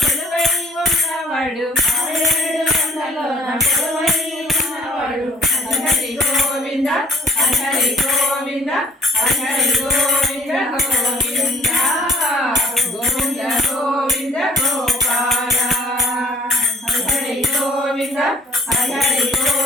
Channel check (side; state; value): both; normal; correlation 0.56